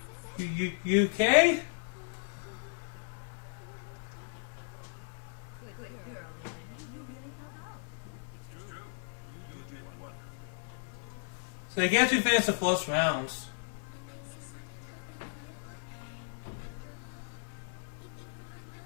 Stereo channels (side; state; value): right; silent; digital silence